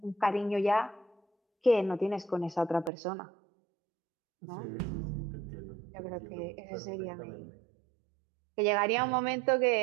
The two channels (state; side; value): drops out; left; at 2.9 s